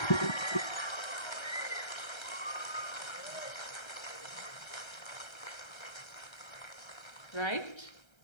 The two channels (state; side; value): late; right; 1.3 ms